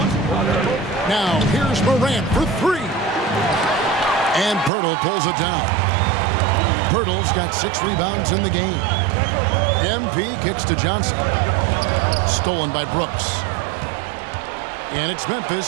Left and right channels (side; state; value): left; drops out; at 4.7 s